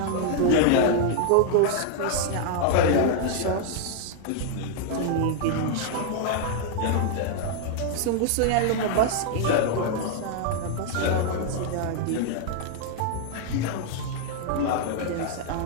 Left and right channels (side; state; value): both; different; correlation 0.00